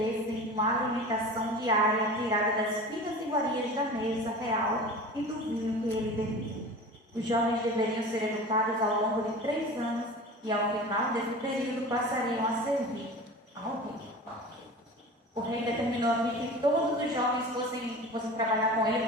uma alimentação diária tirada das finas iguarias da mesa real e do vinho que ele bebia. Os jovens deveriam ser educados ao longo de 3 anos e, ao final desse período, passariam a servir ao rei. O rei determinou aqui que todos os jovens fossem trabalhar com ele,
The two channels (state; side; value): normal; both; correlation 0.36